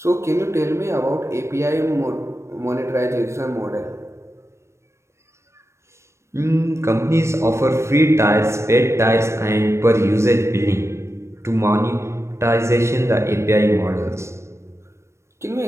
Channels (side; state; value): left; late; 0.13 ms